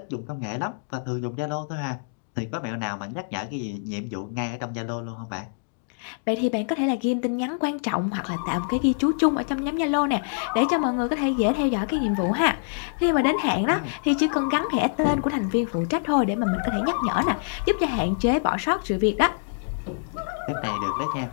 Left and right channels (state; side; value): silent; right; digital silence